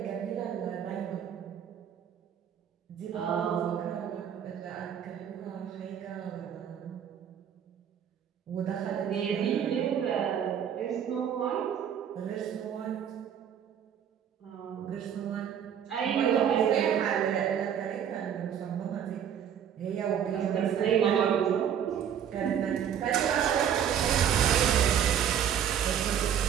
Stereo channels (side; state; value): left; quieter; 8.9 dB